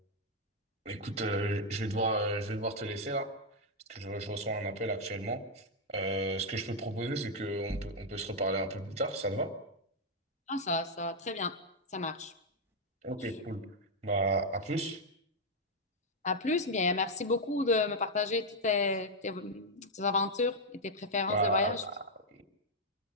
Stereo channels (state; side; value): normal; both; correlation -0.01